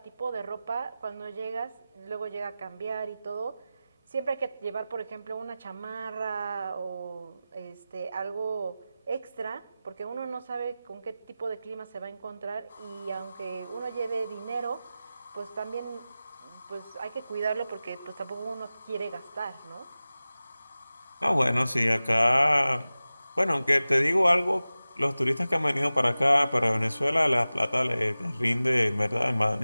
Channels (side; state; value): both; inverted; correlation -0.96